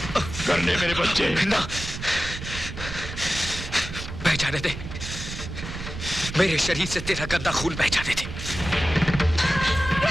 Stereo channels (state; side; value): noise; right; rumble, 9 dB below the sound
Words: करने मेरे बच्चे ना, बह जाने दे। मेरे शरीर से तेरा गंदा खून बह जाने दे।